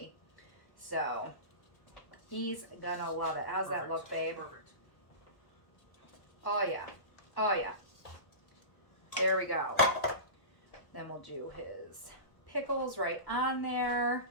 So he's gonna love it. How's that look, babe? Perfect. Oh yeah, oh yeah. There we go. Then we'll do his pickles right on there.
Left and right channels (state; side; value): late; right; 1.1 ms